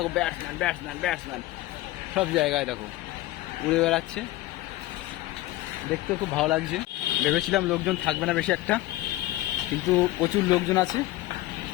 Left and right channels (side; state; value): right; quieter; 17.0 dB